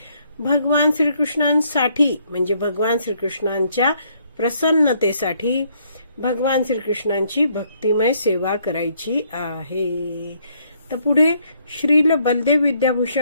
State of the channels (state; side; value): inverted; both; correlation -0.69